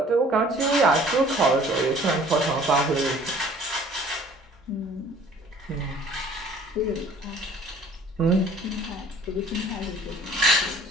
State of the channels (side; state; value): both; normal; correlation 0.52